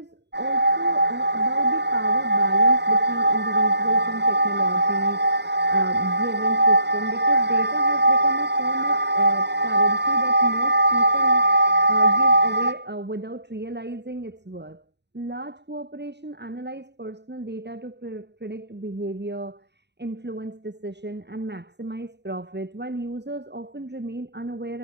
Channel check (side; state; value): left; late; 0.50 ms